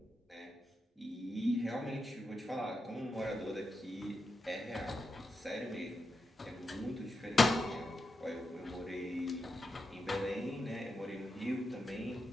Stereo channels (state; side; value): normal; both; correlation 0.87